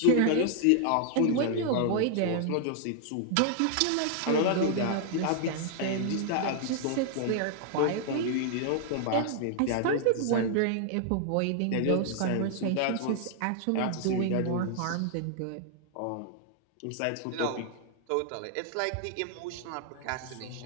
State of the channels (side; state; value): both; different; correlation 0.00